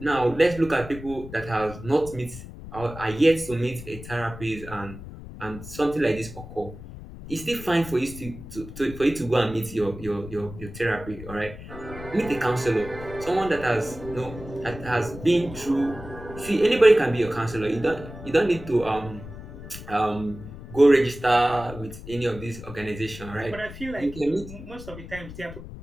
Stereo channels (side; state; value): left; noise; rumble, 13 dB below the sound